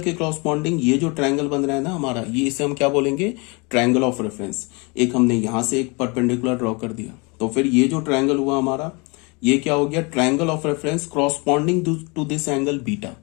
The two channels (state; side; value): quieter; right; 29.4 dB